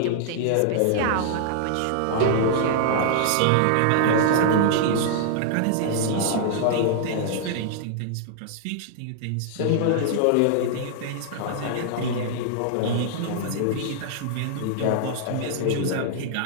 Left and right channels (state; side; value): different; both; correlation -0.01